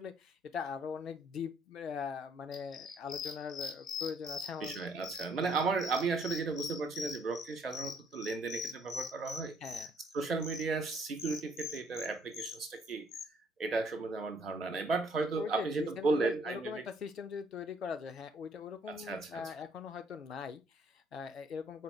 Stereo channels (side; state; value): both; normal; correlation 0.65